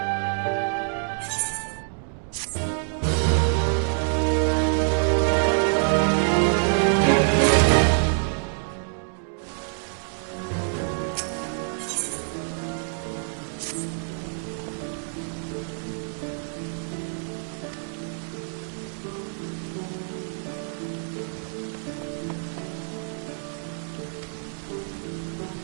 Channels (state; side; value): silent; left; 56 dB below the other